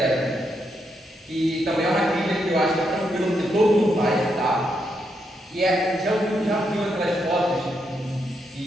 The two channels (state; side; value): normal; both; correlation 0.80